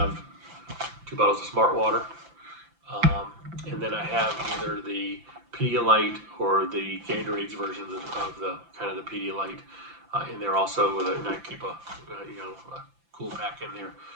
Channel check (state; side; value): late; left; 5.9 ms